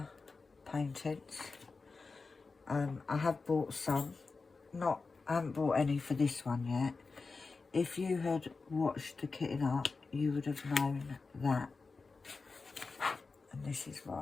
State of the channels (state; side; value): quieter; right; 4.2 dB